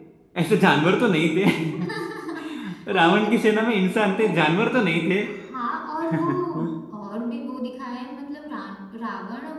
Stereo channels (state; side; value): identical; both; correlation 1.00